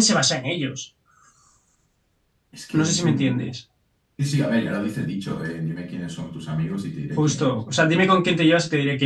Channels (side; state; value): both; identical; correlation 1.00